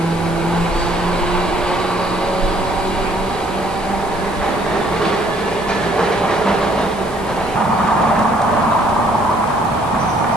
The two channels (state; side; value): noise; left; hiss, 20 dB below the sound